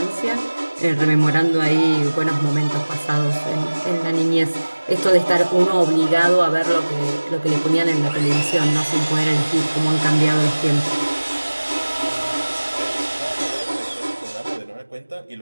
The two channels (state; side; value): inverted; both; correlation -1.00